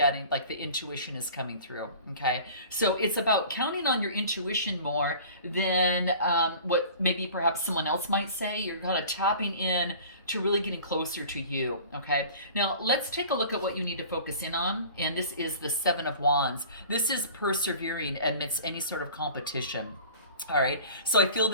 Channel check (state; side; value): inverted; both; correlation -0.44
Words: like the intuition is coming through. Okay, so it's about counting on your intuition more than what maybe perhaps someone else might say. You're kind of tapping in to really getting closer to you. Okay, now let's take a look at what you need to focus in on. And this is the 7 of Wands. This is persevering amidst any sort of competition. All right, so I feel